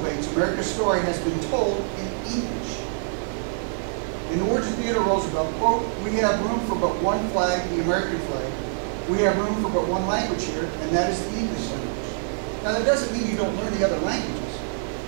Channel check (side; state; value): left; silent; digital silence